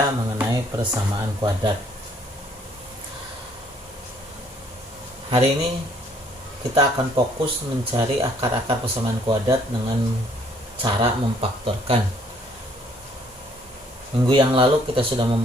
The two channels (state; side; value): normal; both; correlation 0.63